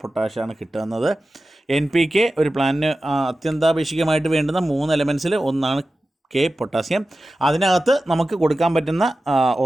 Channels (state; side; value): normal; both; correlation 0.94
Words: പൊട്ടാഷാണ് കിട്ടുന്നത്. NPK ഒരു പ്ലാന്റിന് അത്യന്താപേക്ഷികമായിട്ട് വേണ്ടുന്ന 3 എലമെൻസിൽ ഒന്നാണ് പൊട്ടാസ്യം. അതിനകത്ത് നമുക്ക് കൊടുക്കാൻ പറ്റുന്ന